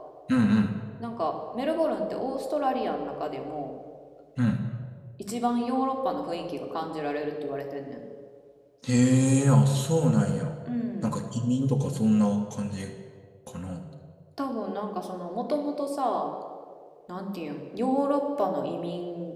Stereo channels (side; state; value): both; identical; correlation 1.00